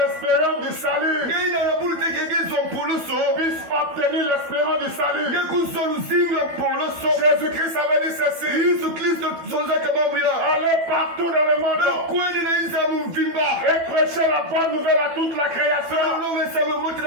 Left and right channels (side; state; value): left; late; 12 ms